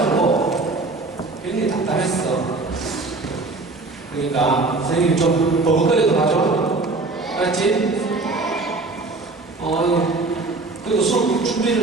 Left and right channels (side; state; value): left; quieter; 3.4 dB